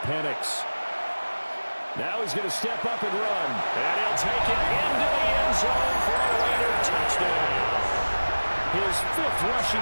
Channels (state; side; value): inverted; both; correlation -1.00